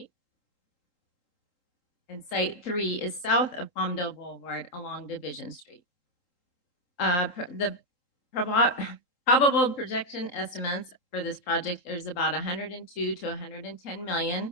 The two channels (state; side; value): late; right; 3.8 ms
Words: And site 3 is south of Palmdale Boulevard along Division Street. The probable projection estimates for this project is about 102 to 110